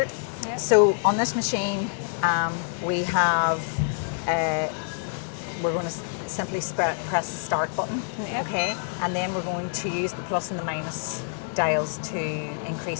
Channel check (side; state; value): right; silent; digital silence